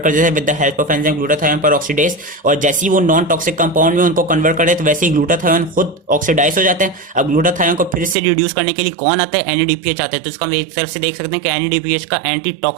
कर देता है with the help of enzyme glutathione peroxidase. और जैसे ही वो नॉन टॉक्सिक कंपाउंड में उनको कन्वर्ट कर देते वैसे ही ग्लूटाथायोन खुद ऑक्सीडाइज हो जाते हैं। अब ग्लूटाथायोन को फिर से रिड्यूस करने के लिए कौन आता है? NADPH आता है। तो इसका हम एक तरफ से देख सकते हैं कि NADPH का एंटी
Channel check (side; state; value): left; drops out; at 8.2 s